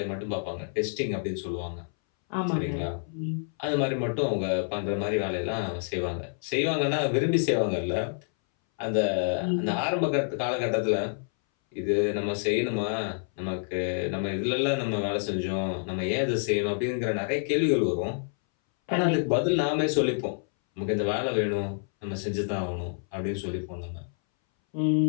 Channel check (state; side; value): silent; right; 59 dB below the other